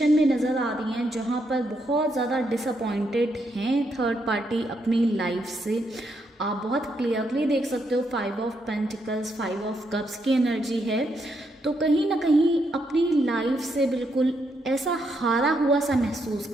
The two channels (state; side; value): normal; both; correlation 0.78